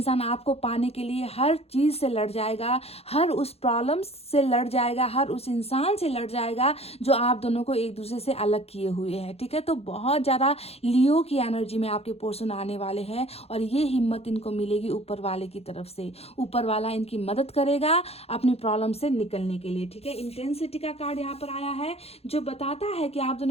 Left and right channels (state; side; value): late; right; 0.29 ms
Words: आपको पाने के लिए हर चीज़ से लड़ जाएगा, हर उस प्रॉब्लम से लड़ जाएगा, हर उस इंसान से लड़ जाएगा जो आप दोनों को एक दूसरे से अलग किए हुए हैं, ठीक है। तो बहुत ज़्यादा लियो की एनर्जी में आपके पर्सन आने वाले हैं और ये हिम्मत इनको मिलेगी ऊपर वाले की तरफ से। ऊपर वाला इनकी मदद करेगा अपनी प्रॉब्लम से निकलने के लिए, ठीक है। इंटेंसिटी का कार्ड यहाँ पर आया है जो बताता है कि आप